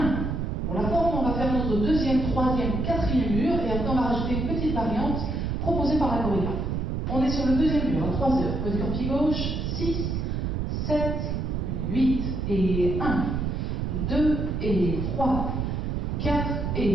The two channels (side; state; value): right; noise; rumble, 1 dB below the sound